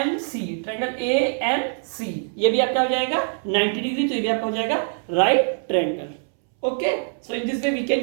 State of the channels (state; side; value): silent; left; 63 dB below the other